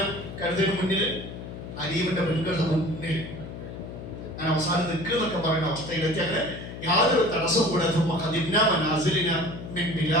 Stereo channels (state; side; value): noise; left; hum, 10 dB below the sound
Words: കരുതലിന് മുന്നിൽ, അലീമിന്റെ പെൺകളുടെ മുന്നിൽ അങ്ങനെ അവസാനം നിൽക്കുന്നൊക്കെ പറയുന്ന അവസ്ഥയിലെത്തി. അങ്ങനെ യാതൊരു തടസ്സവും കൂടാതെ